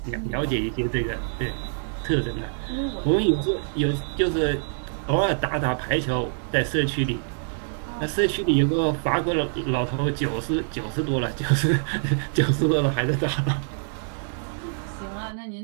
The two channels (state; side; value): silent; left; digital silence